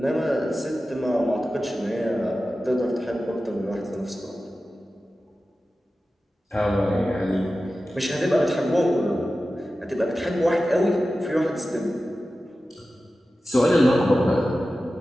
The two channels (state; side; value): normal; both; correlation 0.94